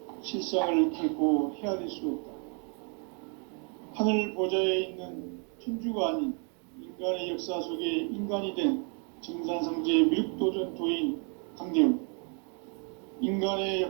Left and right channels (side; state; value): left; quieter; 38.5 dB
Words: 실상을 결코 헤아릴 수 없다. 하늘 보좌에 있는 천주가 아닌 인간의 역사 속에 인간이 된 정산상제 밀도전 도인 강대우, 인간의